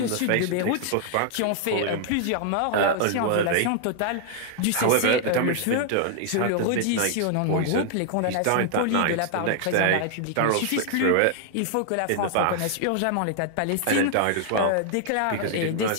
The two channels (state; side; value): different; both; correlation 0.00